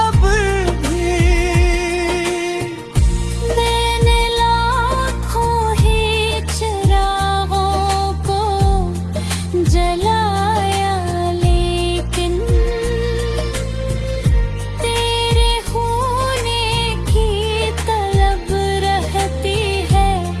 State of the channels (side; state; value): both; identical; correlation 1.00